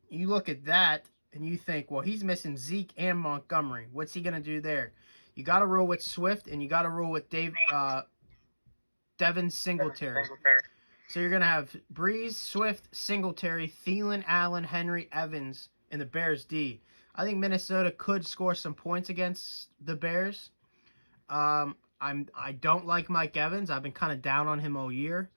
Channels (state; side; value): inverted; both; correlation -1.00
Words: you look at that and you think, well, he's missing Zeke and Montgomery. What's he gonna do there? You got to roll with Swift and you got to roll with Devin Singletary. So you're gonna have Breeze, Swift, Singletary, Thielen, Allen, Henry, Evans, and the Bears D. I think Minnesota could score some points against the Bears. I don't like Mike Evans. I've been kind of down on him all year.